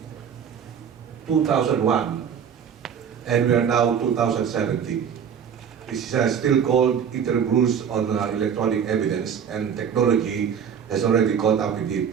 2001, and we are now 2017. This is still called interim rules on electronic evidence, and technology has already caught up with it.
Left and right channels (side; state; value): left; quieter; 7.7 dB